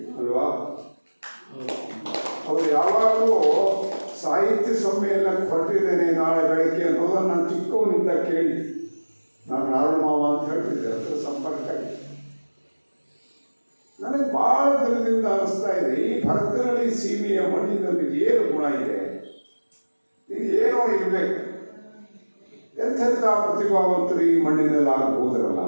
ಅಲ್ವಾ? ಅವರು ಯಾವಾಗಲೂ ಸಾಹಿತ್ಯ ಸಮ್ಮೇಳನಕ್ಕೆ ಹೊರಟಿದ್ದೇನೆ ನಾಳೆ ಬೆಳಗ್ಗೆ ಅನ್ನೋದನ್ನು ನಾನು ಚಿಕ್ಕವನಿಂದ ಕೇಳಿ, ನಾನು ನಾರಾಯಣ ಮಾವ ಅಂತ ಹೇಳ್ತಿದ್ದೆ, ಅದರ ಸಂಪರ್ಕ. ನನಗೆ ಭಾಳ ದಿನದಿಂದ ಅನಿಸ್ತಾ ಇದೆ, ಈ ಭರತನಹಳ್ಳಿ ಸೀಮೆಯ ಮಣ್ಣಿನಲ್ಲಿ ಏನು ಗುಣ ಇದೆ, ಇದು ಏನೋ ಇರಬೇಕು. ಎಂಥೆಂಥ ಪ್ರತಿಭಾವಂತರು ಈ ಮಣ್ಣಿನಲ್ಲಿ ಆಗಬಹುದರಲ್ಲ.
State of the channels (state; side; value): inverted; both; correlation -1.00